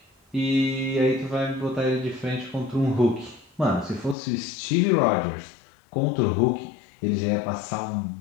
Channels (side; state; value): right; drops out; at 4.2 s